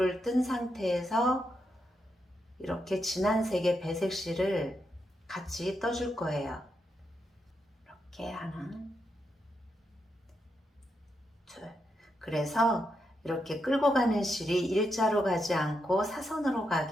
뜬 상태에서 이렇게 진한 색의 배색실을 같이 떠줄 거예요. 이렇게 하나, 둘. 그래서 이렇게 끌고 가는 실이 일자로 가지 않고 사선으로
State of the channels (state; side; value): normal; both; correlation 0.83